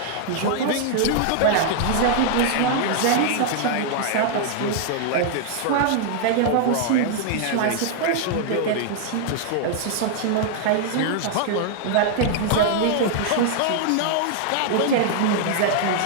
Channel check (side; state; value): both; different; correlation -0.01